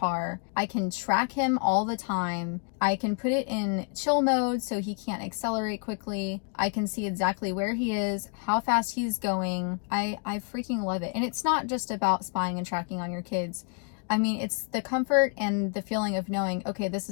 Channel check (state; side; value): quieter; right; 38.5 dB